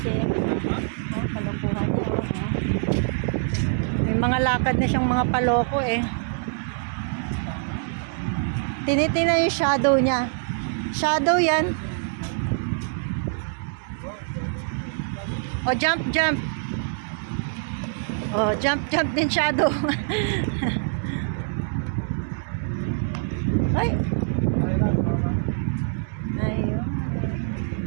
kalukuhan niya. May mga lakad na siyang mga paloko eh. Tinitingnan yung shadow niya. Shadow yan. O, jump, jump. O, jump, jump din shadow. Ay. Ayun.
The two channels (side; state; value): left; silent; digital silence